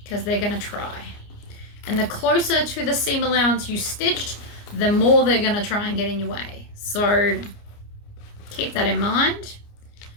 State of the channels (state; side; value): late; right; 29 ms